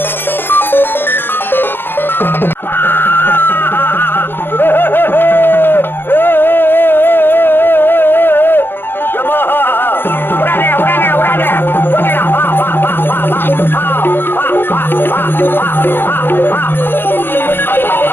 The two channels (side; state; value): right; late; 0.10 ms